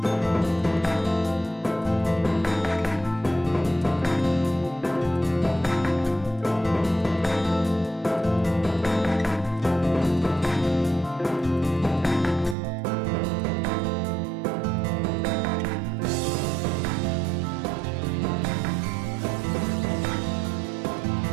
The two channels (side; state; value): left; drops out; at 12.6 s